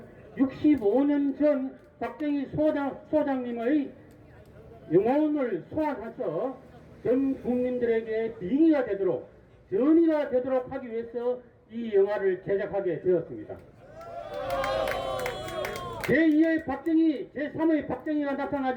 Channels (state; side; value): identical; both; correlation 1.00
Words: 65년 전 박정희 소장님의 영혼을 소환해서 전 국민들에게 빙의가 되도록, 전이가 되도록 하기 위해서 이 영화를 제작하게 되었습니다. 제2의 박정희, 제3의 박정희가